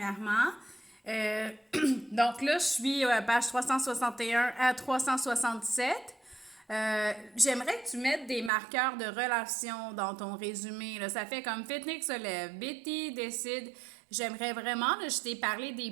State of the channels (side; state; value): left; drops out; at 8.5 s